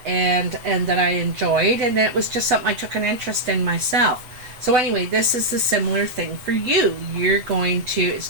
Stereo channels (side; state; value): left; late; 8.0 ms